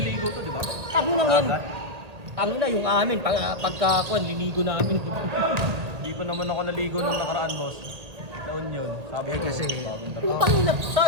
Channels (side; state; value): left; late; 1.8 ms